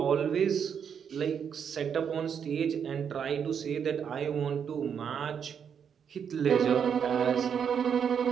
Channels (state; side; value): quieter; left; 7.5 dB